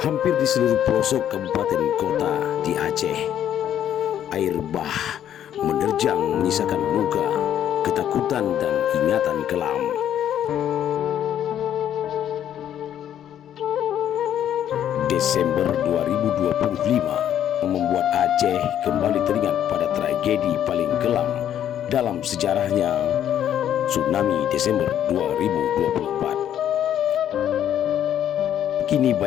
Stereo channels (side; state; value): right; quieter; 10.4 dB